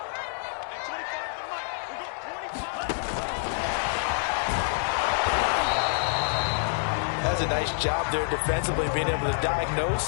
That's a nice job there defensively, being able to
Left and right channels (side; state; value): right; silent; 60 dB below the other